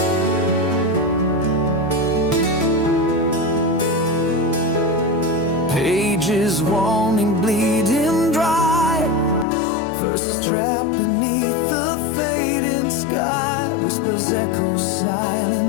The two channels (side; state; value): right; drops out; at 9.5 s